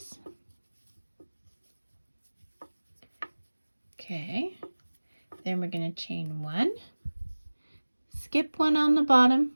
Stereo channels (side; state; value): both; inverted; correlation -1.00